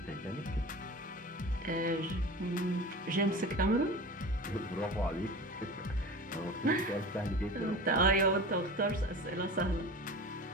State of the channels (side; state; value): both; normal; correlation 0.34